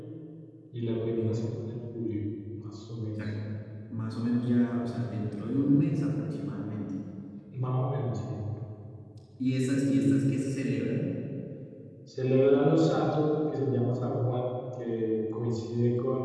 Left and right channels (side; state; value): both; identical; correlation 1.00